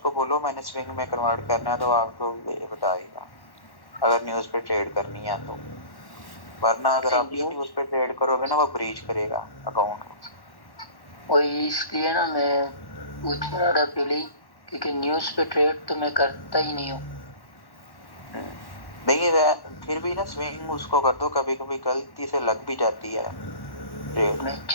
बोलो मैंने स्विंग में कन्वर्ट करना है, तो आपको बताएगा अगर न्यूज़ पे ट्रेड करनी है तो। वरना अगर आप न्यूज़ पे ट्रेड करोगे ना, वो ब्रीच करेगा अकाउंट। वही इसलिए ना मैं पूछ रहा था पहले, क्योंकि न्यूज़ पे ट्रेड तो मैं करता ही नहीं हूँ। नहीं फिर भी ना स्विंग उसको कर दो, कभी कभी गलती से लग भी जाती है ट्रेड। मैं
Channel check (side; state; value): right; late; 1.1 ms